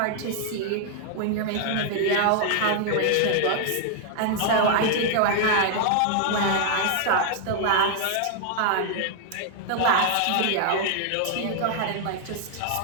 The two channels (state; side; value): different; both; correlation 0.00